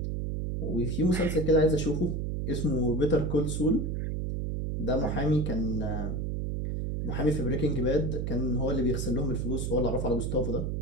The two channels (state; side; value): noise; right; hum, 1 dB below the sound